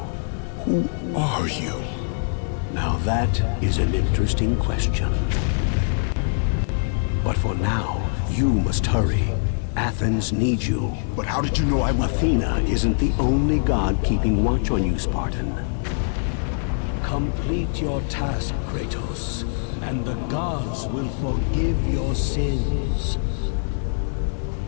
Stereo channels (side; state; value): right; silent; digital silence